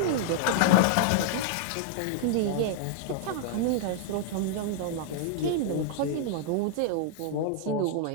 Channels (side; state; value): both; different; correlation -0.01